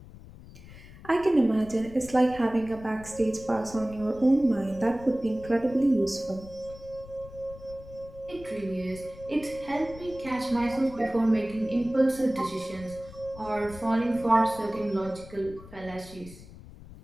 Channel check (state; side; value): noise; left; rumble, 18 dB below the sound